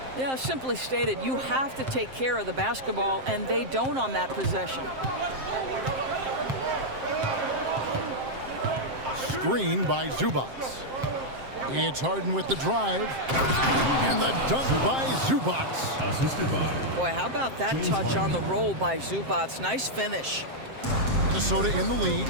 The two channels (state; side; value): late; left; 7.6 ms